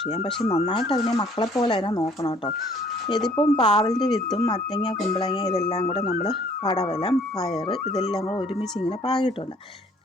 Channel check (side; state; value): both; normal; correlation 0.58